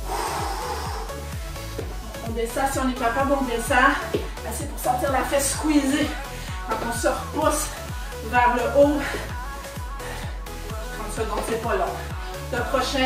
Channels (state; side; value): identical; both; correlation 1.00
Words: On descend si on est capable, on descend. Assez pour sentir la fesse squeezer. Quand on se repousse vers le haut. 30 secondes, c'est pas long. Le